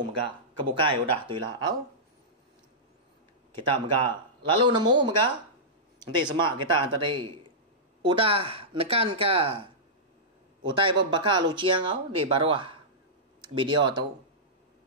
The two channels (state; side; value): normal; both; correlation -0.15